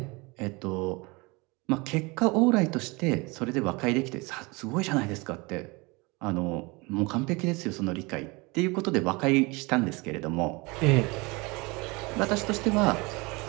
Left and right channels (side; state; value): left; quieter; 26.1 dB